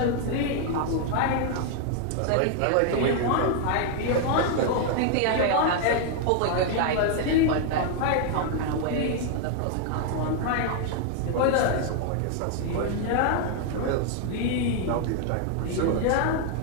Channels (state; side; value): different; both; correlation 0.00